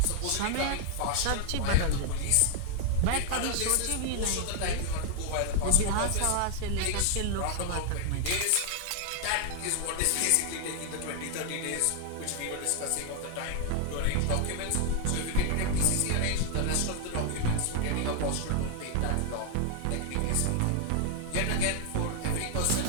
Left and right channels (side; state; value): both; different; correlation 0.00